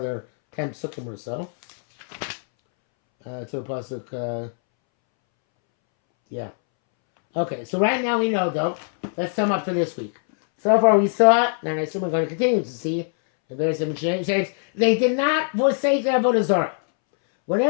10 pesukim or so. To a pasuk, yeah. Okay, so right now we know, though. Let's sum up for this week. So far we saw, and I assume we're going to continue to see, in various different shapes, they did not forsake their avodah zarah.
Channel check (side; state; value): right; silent; 64 dB below the other